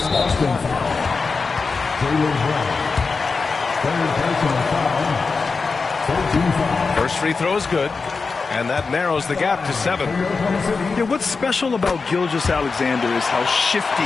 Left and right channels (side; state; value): right; quieter; 4.5 dB